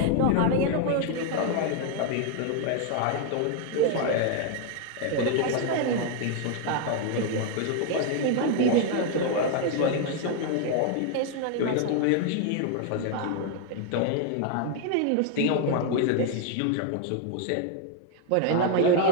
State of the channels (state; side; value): different; both; correlation 0.00